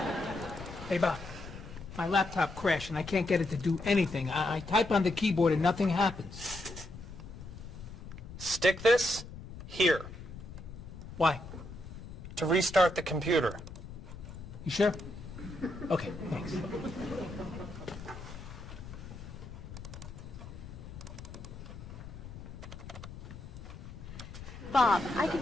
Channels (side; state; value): left; noise; rumble, 12 dB below the sound